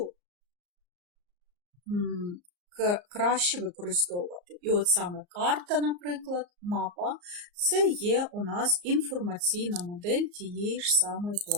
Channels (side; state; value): left; late; 34 ms